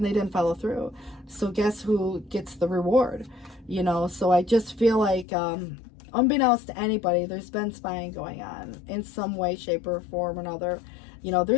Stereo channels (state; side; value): drops out; right; at 5.2 s